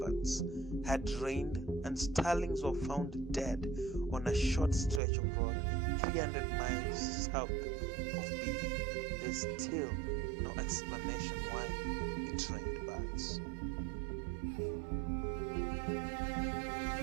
had rained, and starlings were found dead on a short stretch of road 300 miles south of Bibi. There's still no explanation why it rained birds.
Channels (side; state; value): left; drops out; at 5.0 s